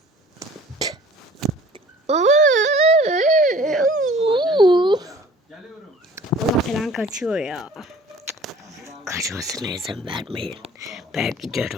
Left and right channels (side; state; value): both; normal; correlation 0.49